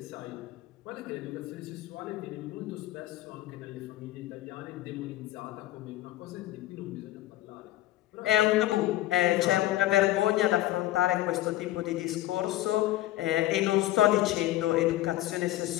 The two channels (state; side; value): quieter; right; 15.2 dB